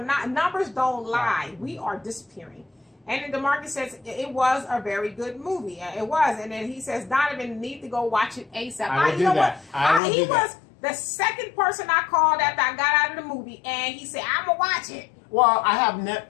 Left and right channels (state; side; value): drops out; right; at 10.0 s